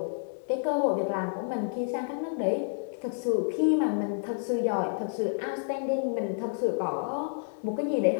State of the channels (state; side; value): silent; right; 58 dB below the other